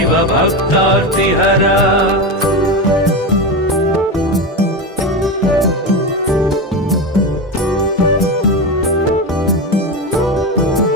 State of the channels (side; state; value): both; normal; correlation 0.18